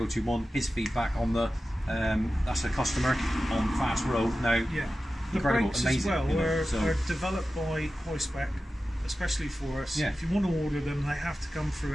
his feedback on the. That's a customer on fast road now. The brakes amazing, as well are developed by High-Spec, especially for us. If you want to order them, they have to come through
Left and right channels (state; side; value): normal; both; correlation 0.94